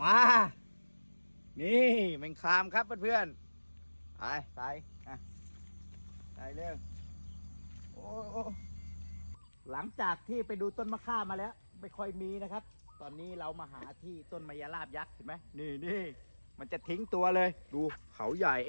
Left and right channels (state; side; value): inverted; both; correlation -1.00